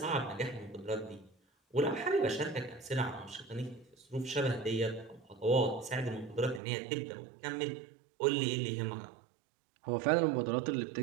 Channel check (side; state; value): left; drops out; at 6.6 s